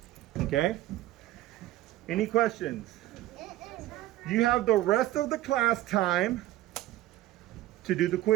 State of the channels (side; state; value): left; quieter; 15.4 dB